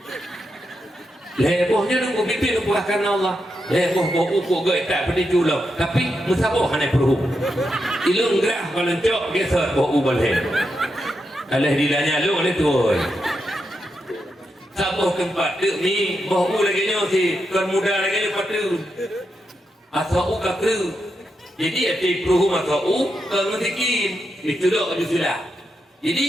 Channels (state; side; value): normal; both; correlation 0.85